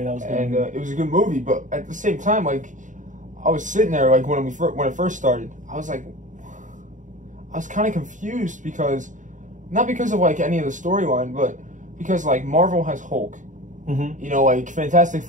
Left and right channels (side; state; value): left; late; 0.37 ms